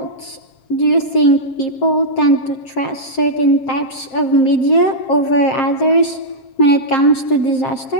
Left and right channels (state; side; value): late; right; 7.5 ms